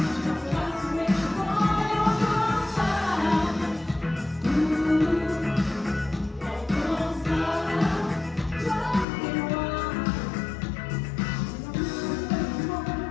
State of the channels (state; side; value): drops out; right; at 9.1 s